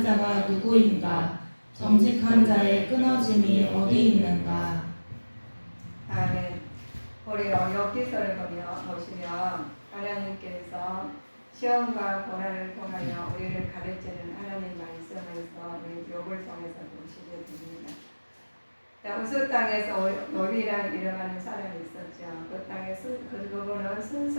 자가 누구인가? 정직한 자의 끊어짐이 어디 있는가? 아멘. 우리 엽기서를 보시면 하나님께서 시험과 고난을 통하여 우리를 가르치는 하나님 말씀에서 우리 욥을 통해서 보시게 됩니다. 우스 땅에서 욥이라는 이름하는 사람이 있었죠. 그 땅에 그분은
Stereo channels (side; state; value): both; inverted; correlation -1.00